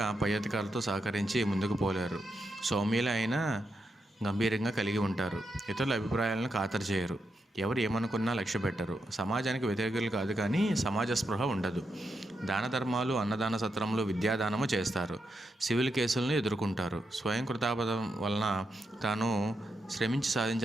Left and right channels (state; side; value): normal; both; correlation 0.84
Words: పై అధికారులతో సహకరించి ముందుకు పోలేరు. సౌమ్యులు అయినా గంభీరంగా కలిగి ఉంటారు. ఇతరుల అభిప్రాయాలను ఖాతరు చేయరు. ఎవరు ఏమనుకున్నా లక్ష్య పెట్టరు. సమాజానికి వ్యతిరేకులు కాదు, కానీ సమాజ స్పృహ ఉండదు. దాన ధర్మాలు, అన్నదాన సత్రములు, విద్యాదానము చేస్తారు. సివిల్ కేసులను ఎదుర్కొంటారు. స్వయం కృతాపదం వలన తాను శ్రమించి